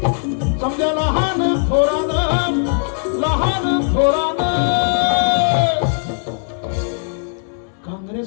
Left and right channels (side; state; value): right; silent; digital silence